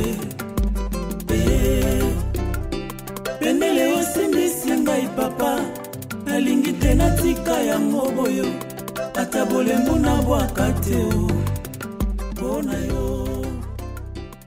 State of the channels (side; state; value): both; identical; correlation 1.00